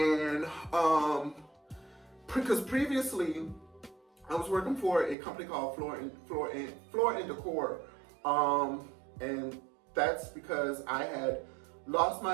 because previously I was working for a company called Floor and Decor, and that's because I had lost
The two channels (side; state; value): left; drops out; at 5.2 s